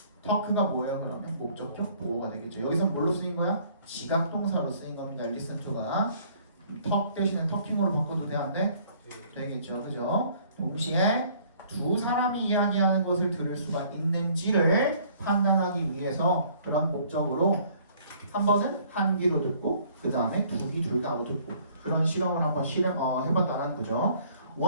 talk가 뭐예요? 그러면 목적격 보호가 되겠죠. 여기서 뭘로 쓰인 거야? 지각동사로 쓰인 겁니다. listen to가 talk 대신에 talking으로 바꿔도 되는데 되겠죠. 그죠? 동시에 두 사람이 이야기하는 것을 들을 수가 있는지를 판단하기 위해서 그런 목적으로 한 번은 한 귀로 듣고 그 다음에 두 귀 둘 다로 듣고 그런 실험을 한번 해봤다는 거죠.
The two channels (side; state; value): both; inverted; correlation -0.58